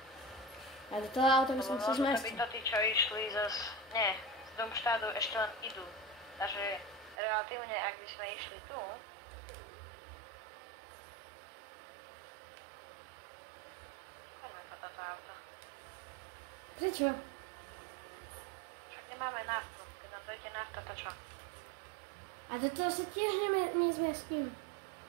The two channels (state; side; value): drops out; left; at 7.2 s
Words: A do toho auta by som Lebo sa možno zmestil. by to tí, čo išli z Domštádu ešte len idú. Takže relatívne, ak by sme išli tu, poďme po toto auto. Prečo? Však nemáme naftu. Keď nám dojde nafta, to čo? A do toho sa tiež nezmestím.